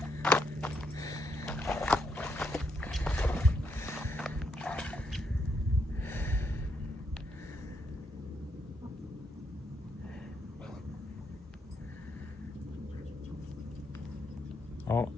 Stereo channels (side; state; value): both; normal; correlation 0.78